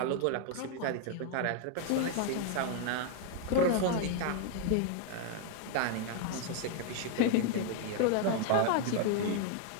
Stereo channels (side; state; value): both; different; correlation 0.00